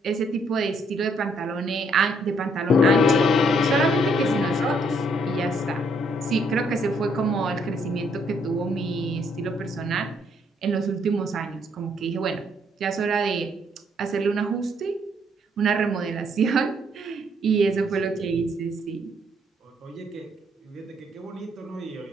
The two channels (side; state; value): both; normal; correlation 0.69